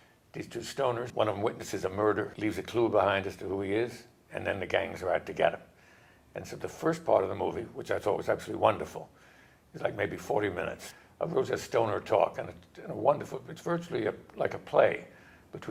these two stoners, one of them witnesses a murder, leaves a clue behind as to who he is, and then the gangs are out to get him. And so the first part of the movie, which I thought was absolutely wonderful, is like maybe 40 minutes of Rosa stoner talk, and a wonderful, it's virtually like a play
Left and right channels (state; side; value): identical; both; correlation 1.00